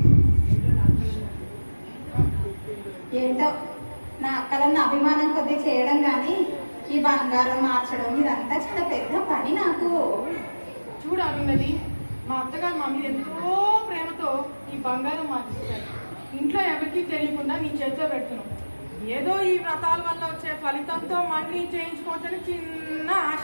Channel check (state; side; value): inverted; both; correlation -1.00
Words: ఏంటో నా అక్కలన్న అభిమానం కొద్ది చేయడం కానీ ఈ బంగారం మార్చడం ఇదంతా చాలా పెద్ద పని నాకు. చూడు అరుంధతి, మా అత్తగారు మా మీద ఎంతో ప్రేమతో ఈ బంగారం మార్చిస్తారు. ఇంట్లో ఎవరికీ తెలియకుండా నీ చేతిలో పెడుతున్నావు. ఏదో ఈ వ్రతాల వల్ల వచ్చే ఫలితంతో మళ్ళీ చేయించుకోవచ్చని చిన్న